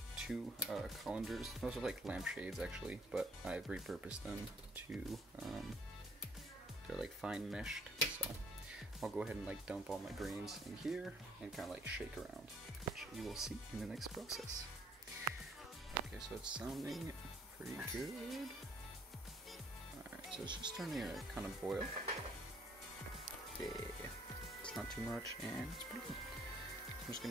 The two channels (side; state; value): both; normal; correlation 0.61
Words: two colanders. Those are like lampshades actually, but I've repurposed them to, they're like fine meshed, so I'll go ahead and like dump all my grains in here and kind of like shake around, which you will see in the next process. Okay, so it's sounding pretty good. Alright, so it's just starting to kind of boil. Yeah, it's not too much and it's pretty good. I'm just